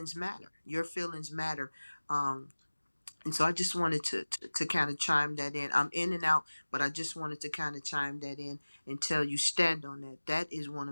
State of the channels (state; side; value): inverted; both; correlation -1.00